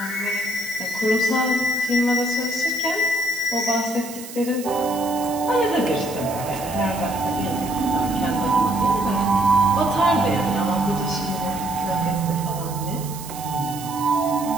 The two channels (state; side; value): noise; right; hiss, 13 dB below the sound